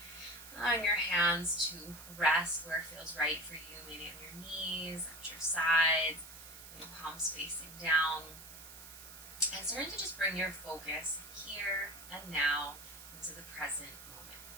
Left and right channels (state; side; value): noise; right; hiss, 15 dB below the sound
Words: Allowing your hands to rest where it feels right for you, maybe on your knees, at your sides, your palms facing down. And starting to just bring your focus here and now into the present moment.